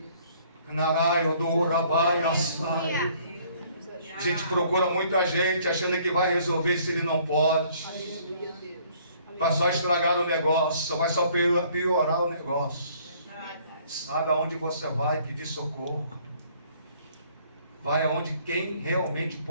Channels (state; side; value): inverted; both; correlation -0.60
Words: A gente procura muita gente achando que vai resolver se ele não pode. Vai só estragar o negócio, vai só piorar o negócio. Sabe aonde você vai pedir socorro? Vai aonde quem realmente